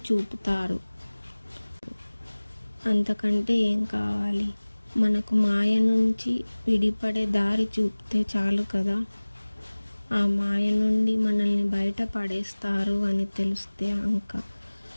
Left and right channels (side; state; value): both; inverted; correlation -1.00